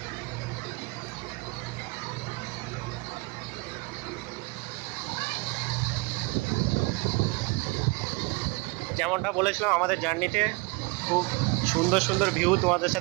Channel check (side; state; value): left; quieter; 26.2 dB